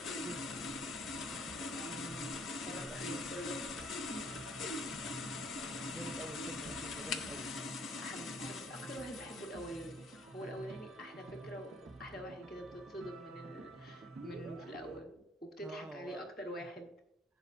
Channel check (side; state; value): both; normal; correlation 0.61